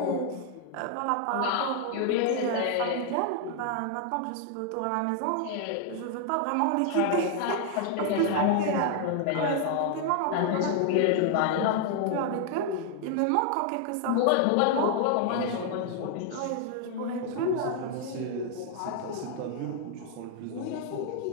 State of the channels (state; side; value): different; both; correlation 0.00